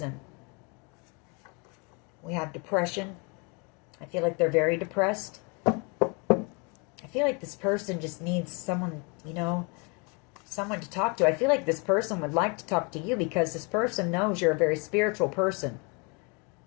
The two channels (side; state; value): right; quieter; 32.1 dB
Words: We have depression. I feel like they're very depressed. I feel like this person just needs someone, you know, someone to talk to. I feel like this person would like to talk to you, because this person knows you're a very spiritual person.